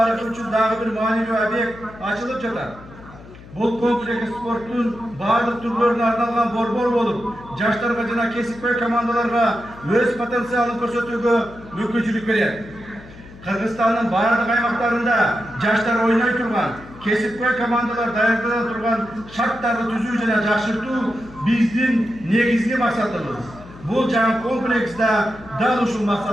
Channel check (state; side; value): noise; left; hum, 19 dB below the sound